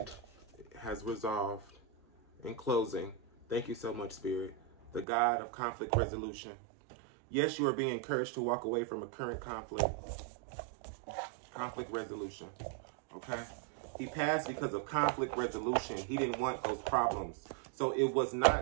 has resolved. In closing, thank you so much, Spirit. The God of conflict resolution. Yes, you are being encouraged to walk away from a current conflict. Conflict resolution. Okay? He passed because of conflict resolution. He didn't want those problems. So it was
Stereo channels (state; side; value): drops out; left; at 5.1 s